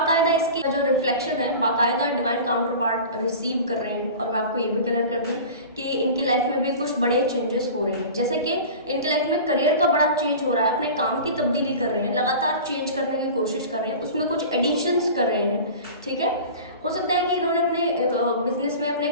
इसकी जो रिफ्लेक्शन है बाकायदा डिवाइन काउंटर पार्ट रिसीव कर रहे हैं। और मैं आपको ये भी क्लियर कर दूं कि इनकी लाइफ में भी कुछ बड़े चेंजेस हो रहे हैं, जैसे कि इनकी लाइफ में करियर का बड़ा चेंज हो रहा है, अपने काम की तब्दीली कर रहे हैं, लगातार चेंज करने की कोशिश कर रहे हैं, उसमें कुछ एडिशंस कर रहे हैं। ठीक है, हो सकता है कि इन्होंने अपने बिजनेस में अपने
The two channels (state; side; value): inverted; both; correlation -0.36